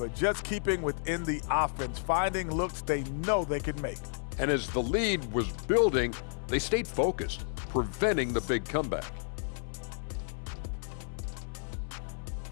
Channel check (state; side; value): silent; right; digital silence